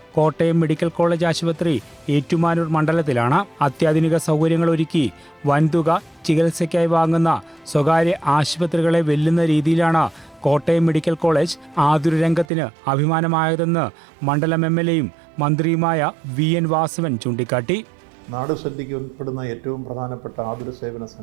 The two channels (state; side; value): drops out; left; at 12.5 s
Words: കോട്ടയം മെഡിക്കൽ കോളേജ് ആശുപത്രി ഏറ്റുമാനൂർ മണ്ഡലത്തിലാണ്. അത്യാധുനിക സൗകര്യങ്ങൾ ഒരുക്കി വൻതുക ചികിത്സയ്ക്കായി വാങ്ങുന്ന സ്വകാര്യ ആശുപത്രികളെ വെല്ലുന്ന രീതിയിലാണ് കോട്ടയം മെഡിക്കൽ കോളേജ് ആതുര രംഗത്തിന് അഭിമാനമായതെന്ന് മണ്ഡലം MLAയും മന്ത്രിയുമായ VN വാസവൻ ചൂണ്ടിക്കാട്ടി. നാട് ശ്രദ്ധയ്ക്ക് ഉൾപ്പെടുന്ന ഏറ്റവും പ്രധാനപ്പെട്ട ആതുര സേവന